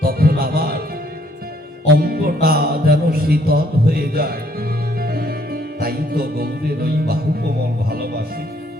তখন আমার অঙ্গটা যেন শীতল হয়ে যায়। তাই তো গৌরের ওই বাহু কোমল ভালোবাসি।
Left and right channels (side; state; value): both; normal; correlation 0.65